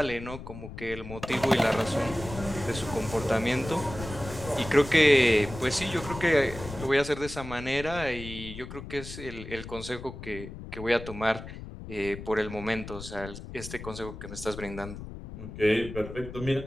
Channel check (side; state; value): left; noise; rumble, 11 dB below the sound